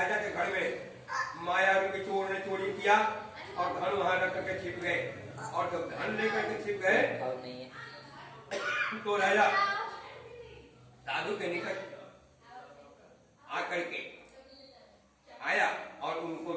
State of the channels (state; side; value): identical; both; correlation 1.00